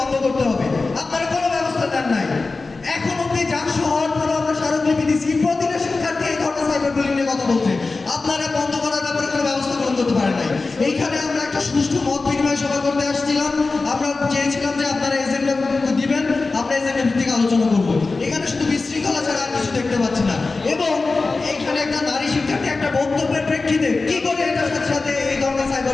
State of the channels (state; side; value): quieter; right; 3.8 dB